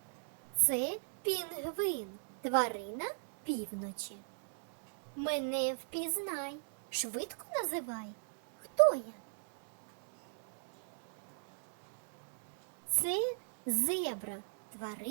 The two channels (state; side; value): silent; left; digital silence